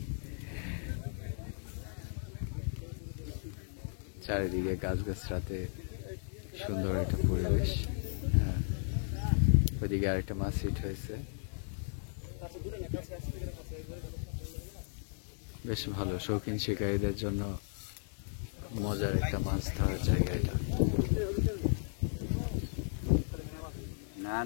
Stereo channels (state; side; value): silent; right; digital silence